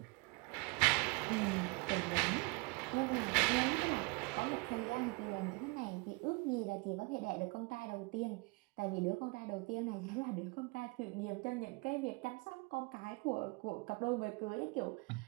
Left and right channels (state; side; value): quieter; left; 27.8 dB